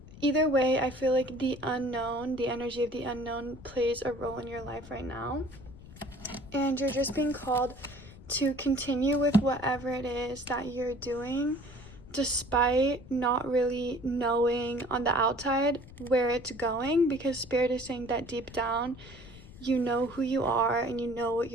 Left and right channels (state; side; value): noise; left; rumble, 18 dB below the sound